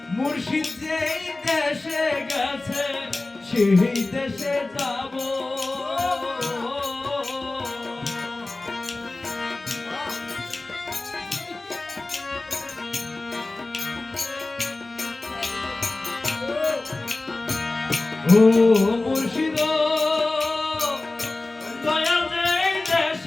মুর্শিদ যেই দেশে গেছে সেই দেশে যাব ও মুর্শিদ দয়াল যেই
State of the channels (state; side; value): quieter; right; 3.1 dB